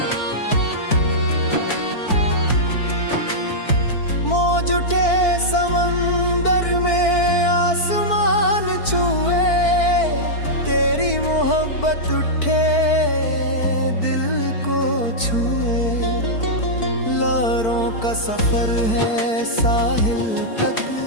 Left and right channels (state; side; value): late; right; 4.5 ms